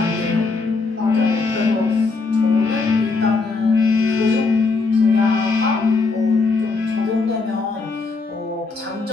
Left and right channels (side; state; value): right; quieter; 4.1 dB